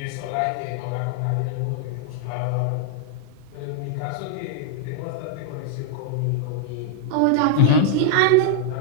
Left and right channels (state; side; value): different; both; correlation -0.01